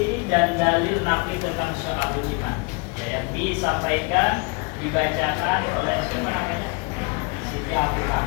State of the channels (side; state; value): right; quieter; 31.2 dB